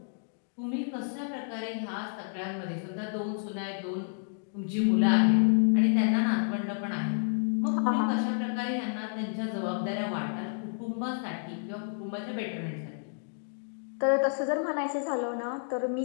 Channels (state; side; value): silent; right; digital silence